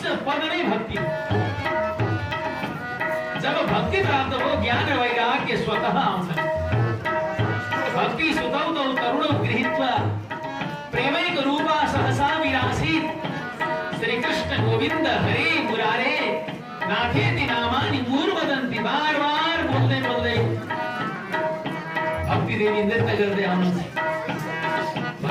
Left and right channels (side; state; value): both; identical; correlation 1.00